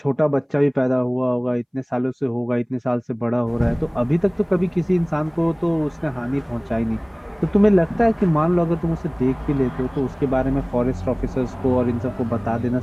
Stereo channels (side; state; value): both; identical; correlation 1.00